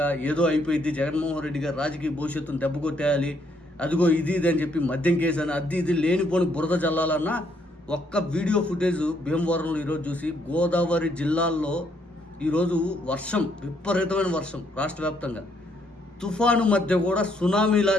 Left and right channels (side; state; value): both; normal; correlation 0.71